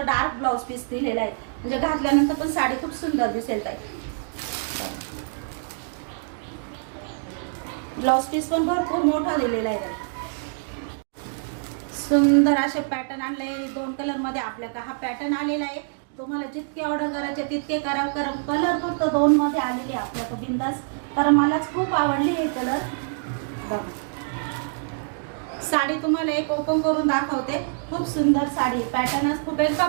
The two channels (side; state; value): left; silent; digital silence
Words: डार्क ब्लाऊज पीस दिलेला आहे, म्हणजे घातल्यानंतर पण साडी खूप सुंदर दिसेल ताई. ब्लाऊज पीस पण भरपूर मोठा दिलेला आहे. सुंदर असे पॅटर्न आणले 2 कलर मध्ये आपल्याकडे हा पॅटर्न आलेला आहे. तुम्हाला जितके ऑर्डर करायचे तितके करा. कलर फक्त 2 मध्ये आलेले आपल्याकडे बिंदास, कारण मलाच खूप आवडली हे कलर. बघा, साडी तुम्हाला एक ओपन करून दाखवते. खूप सुंदर साडी, पॅटर्नच खूप आहे,